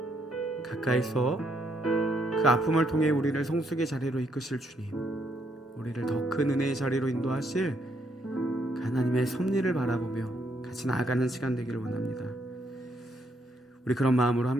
가까이서 그 아픔을 통해 우리를 성숙의 자리로 이끄실 주님, 우리를 더 큰 은혜의 자리로 인도하실 그 하나님의 섭리를 바라보며 같이 나아가는 시간 되기를 원합니다. 우리 그런 마음으로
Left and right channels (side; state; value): both; normal; correlation 0.74